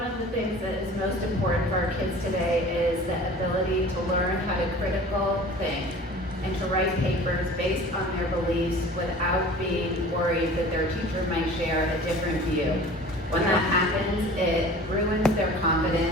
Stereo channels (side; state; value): both; normal; correlation 0.43